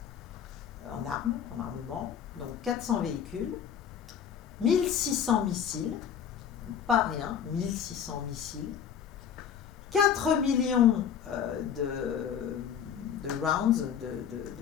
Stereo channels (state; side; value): quieter; right; 8.3 dB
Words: armement, donc 400 véhicules, 1600 missiles, pas rien, 1600 missiles, 4 millions de rounds,